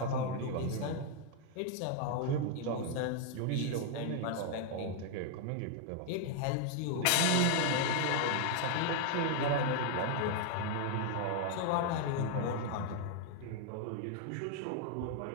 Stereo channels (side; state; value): both; different; correlation 0.00